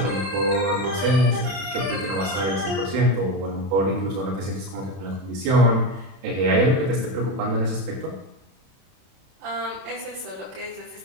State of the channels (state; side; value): late; left; 31 ms